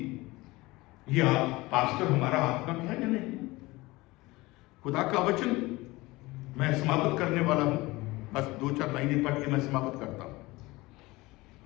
ये पास्टर हमारा आत्मा है या नहीं। खुदा का वचन मैं समाप्त करने वाला हूं, बस 2-4 लाइनें पढ़ के मैं समाप्त करता हूं।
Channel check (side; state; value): right; quieter; 21.1 dB